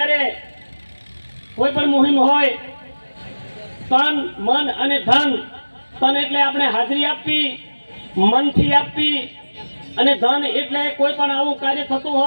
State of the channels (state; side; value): inverted; both; correlation -1.00